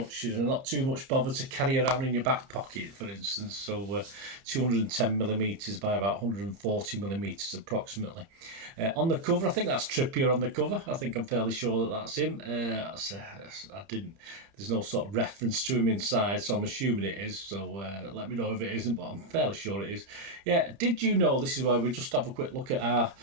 bother to carry around in your back pocket, for instance. So 210 millimeters by about 140 millimeters approximately. On the cover, I think that's Trippier on the cover. I think I'm fairly sure that that's him. There's no sort of reference to him inside, so I'm assuming it is. So let me know if it isn't, but I'm fairly sure it is. Yeah, did you know, this is where we just have a quick look at our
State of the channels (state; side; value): late; left; 30 ms